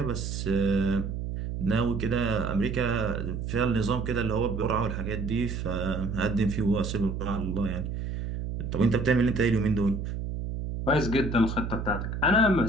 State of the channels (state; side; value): noise; right; hum, 4 dB below the sound